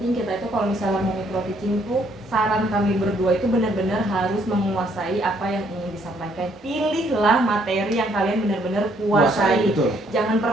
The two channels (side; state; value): both; normal; correlation 0.68